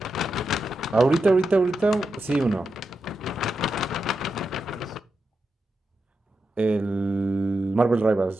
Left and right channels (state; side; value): normal; both; correlation 0.87